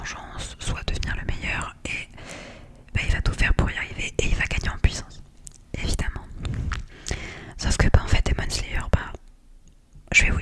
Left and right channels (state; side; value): identical; both; correlation 1.00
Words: soit devenir le meilleur, et il va tout faire pour y arriver et il va gagner en puissance, évidemment. Sauf que en fait, Demon Slayer, je vais